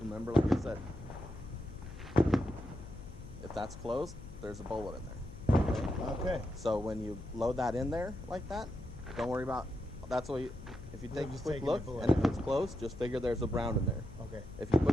remember like I said, if that's closed, there's a bullet in there. Okay. So when you load that in there like that, don't worry about, that's what you, if you take a just quick taking look, the bullet and if out. it's closed, just figure there's a brown in there. Okay. If you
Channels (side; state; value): left; noise; hum, 14 dB below the sound